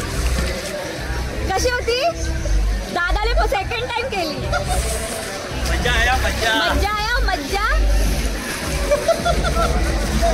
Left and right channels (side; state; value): both; identical; correlation 1.00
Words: कशी होती. दादाने सेकंड टाइम केली. मज्जा आया मज्जा. मज्जा आया मज्जा.